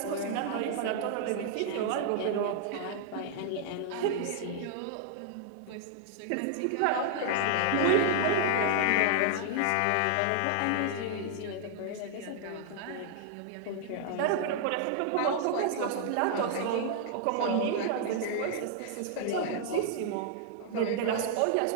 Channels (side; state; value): both; different; correlation -0.01